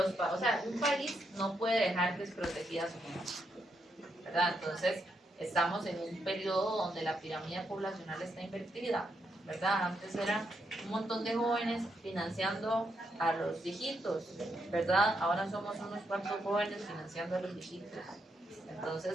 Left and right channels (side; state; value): both; normal; correlation 0.80